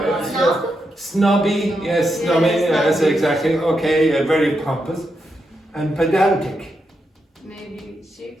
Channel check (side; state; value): both; normal; correlation 0.84